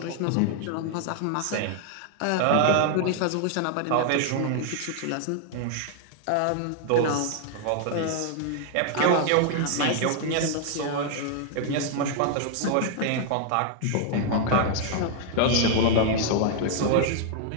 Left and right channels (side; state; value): both; different; correlation 0.00